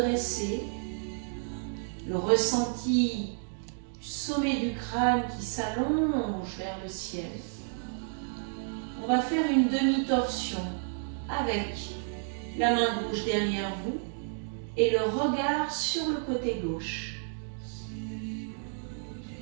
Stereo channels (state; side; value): silent; left; digital silence